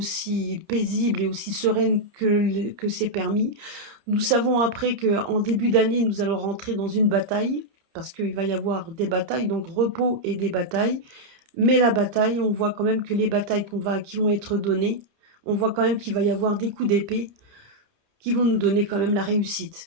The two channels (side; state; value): left; late; 30 ms